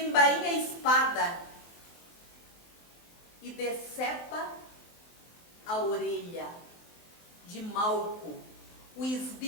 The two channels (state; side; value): late; right; 23 ms